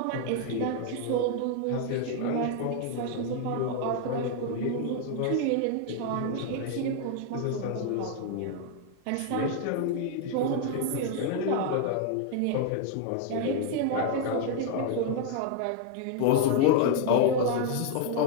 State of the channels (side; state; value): both; different; correlation 0.00